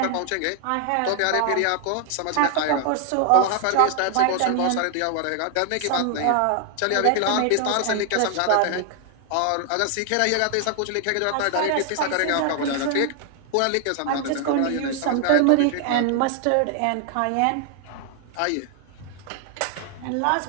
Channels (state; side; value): different; both; correlation 0.00